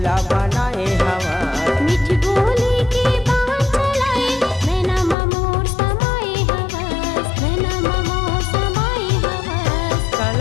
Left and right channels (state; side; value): drops out; right; at 5.2 s